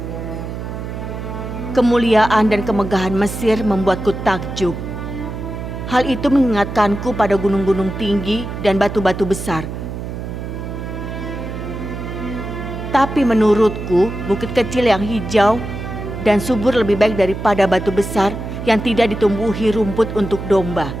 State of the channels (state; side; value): noise; right; hum, 7 dB below the sound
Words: Kemuliaan dan kemegahan Mesir membuatku takjub. Hal itu mengingatkanku pada gunung-gunung tinggi dan batu-batu besar. Tapi menurutku, bukit kecil yang hijau dan subur lebih baik daripada batu besar yang tidak ditumbuhi rumput untuk domba.